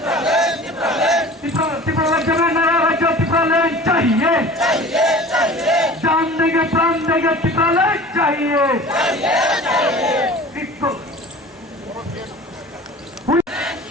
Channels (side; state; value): both; normal; correlation 0.41